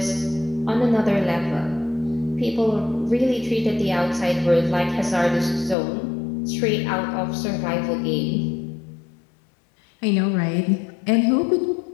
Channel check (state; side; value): drops out; right; at 5.8 s